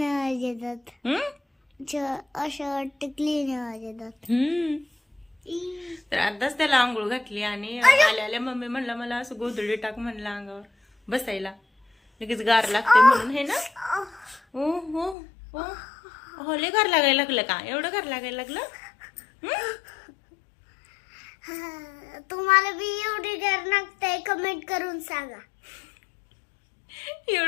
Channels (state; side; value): drops out; right; at 15.2 s